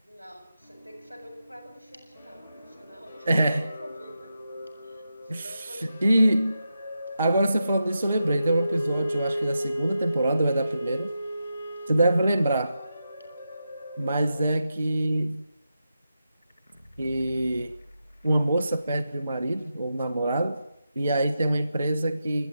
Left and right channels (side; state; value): both; inverted; correlation -0.88